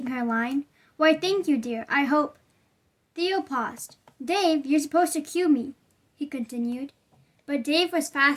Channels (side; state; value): both; identical; correlation 1.00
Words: her line. Why, thank you, dear. I hope... Theo paused. Dave, you're supposed to cue me, he continued. But Dave was